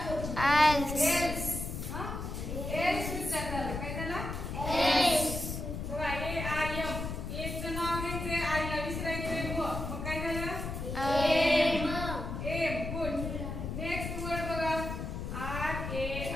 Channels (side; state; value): left; noise; rumble, 5 dB below the sound